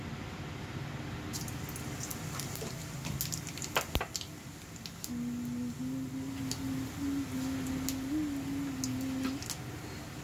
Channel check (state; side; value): identical; both; correlation 1.00